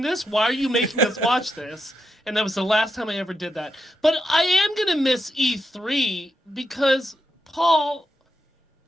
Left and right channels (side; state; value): both; normal; correlation 0.84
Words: this? Why are you making us watch this? And that was the last time I ever did that. But I am going to miss E3 because, Paul,